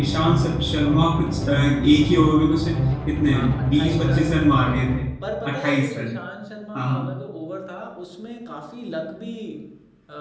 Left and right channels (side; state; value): both; identical; correlation 1.00